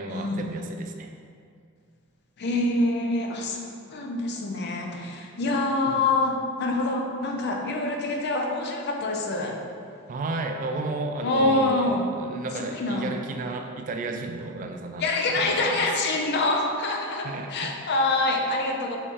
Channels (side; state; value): both; normal; correlation 0.09